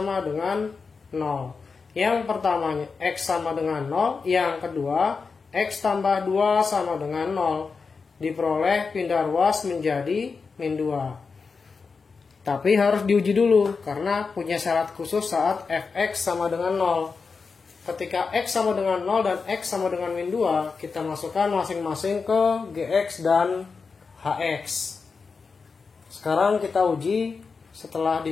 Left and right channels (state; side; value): quieter; right; 4.9 dB